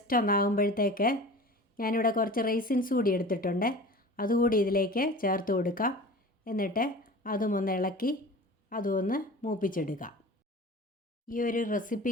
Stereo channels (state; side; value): normal; both; correlation 0.38